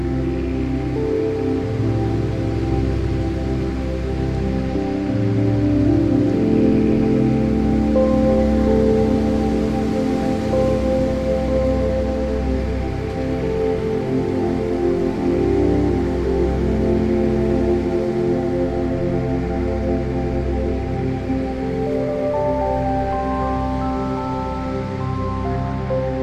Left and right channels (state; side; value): identical; both; correlation 1.00